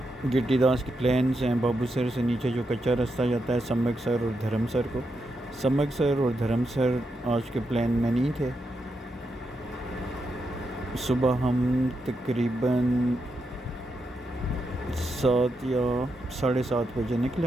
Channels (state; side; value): normal; both; correlation 0.84